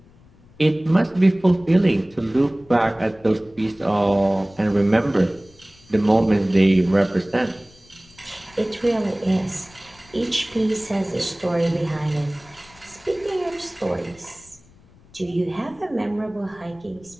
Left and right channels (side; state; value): left; noise; rumble, 27 dB below the sound